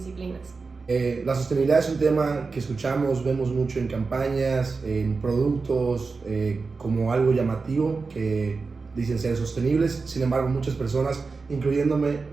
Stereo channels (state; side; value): quieter; left; 4.4 dB